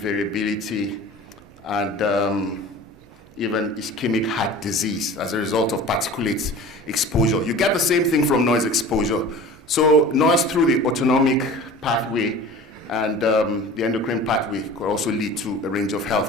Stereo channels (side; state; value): both; normal; correlation 0.40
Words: and even ischemic heart disease as a result of particulate exposure. You get the same thing from noise exposure. So noise through the autonomic pathway and the endocrine pathway could also lead to a range of